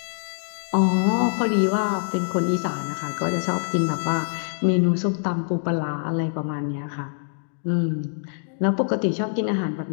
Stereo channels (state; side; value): silent; right; 62 dB below the other